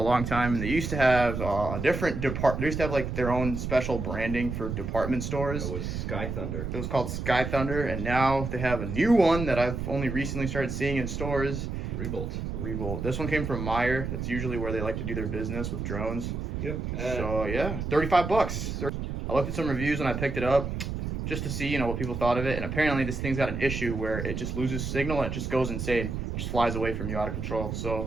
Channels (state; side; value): noise; right; rumble, 4 dB below the sound